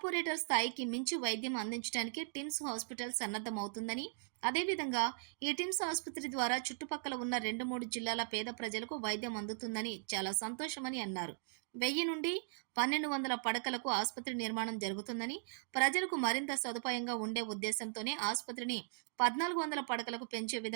స్థాయికి మించి వైద్యం అందించడానికి టిమ్స్ హాస్పిటల్ సన్నద్దమవుతుందని, అదేవిధంగా ఈ టిమ్స్ ఆసుపత్రి ద్వారా చుట్టుపక్కల ఉన్న 2-3 జిల్లాల పేద ప్రజలకు వైద్యం అందుతుందని చాలా సంతోషమని అన్నారు. 1000 నుండి 1200 పడకలకు ఆసుపత్రి నిర్మాణం జరుగుతుందని, ప్రజలకు మరింత సదుపాయంగా ఉండే ఉద్దేశంతోనే ఆసుపత్రిని 1400 పడకలకు పెంచే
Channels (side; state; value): left; silent; digital silence